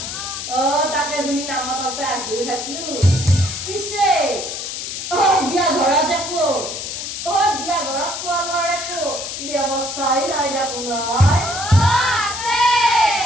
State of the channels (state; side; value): noise; left; hiss, 6 dB below the sound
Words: তাকে তুমি নামাততে আহিও থাকিলো পিছে বিয়া ঘৰত দেখো বিয়া ঘৰত খোৱা লোৱাৰ একো ব্যৱস্থাই নাই দেখো নাই